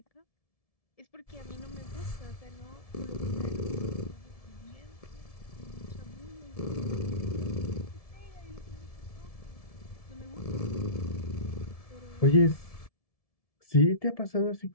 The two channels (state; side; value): late; right; 1.7 ms